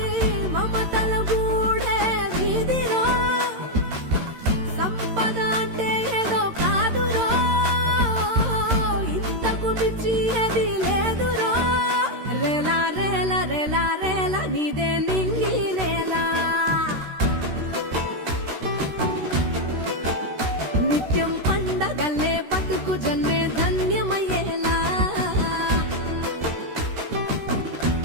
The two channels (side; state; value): left; late; 13 ms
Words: మమతల గూడే వీధిలో, సంపద అంటే ఏదో కాదురో, ఇంతకు మించి అది